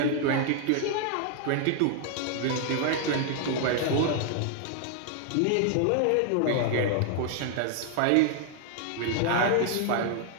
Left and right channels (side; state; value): both; different; correlation 0.00